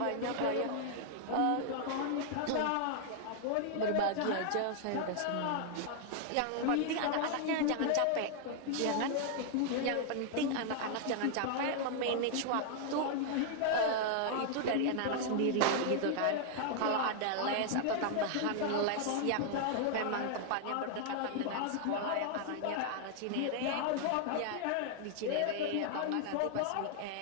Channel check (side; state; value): both; different; correlation 0.00